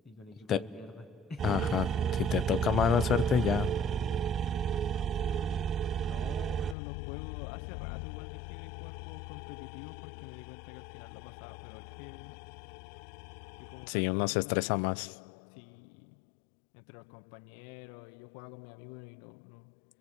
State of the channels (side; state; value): right; drops out; at 6.8 s